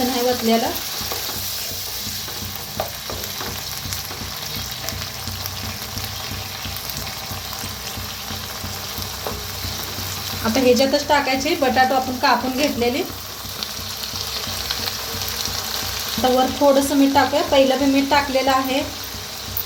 नाही ओतलेलं। आता ह्याच्यातच टाकायचे बटाटो आपण कापून घेतलेले। आता वर थोडंसं मीठ टाकूया, पहिलं बी मीठ टाकलेलं आहे।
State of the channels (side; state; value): both; identical; correlation 1.00